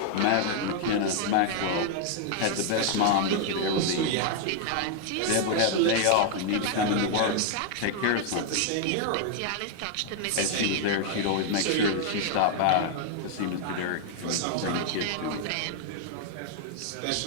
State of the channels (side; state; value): both; different; correlation 0.00